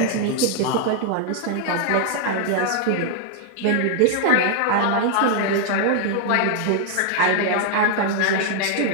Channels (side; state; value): both; different; correlation 0.00